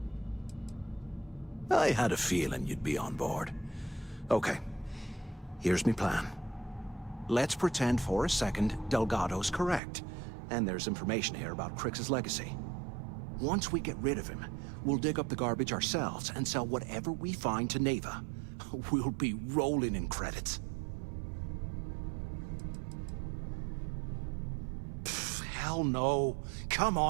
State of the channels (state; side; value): drops out; left; at 9.8 s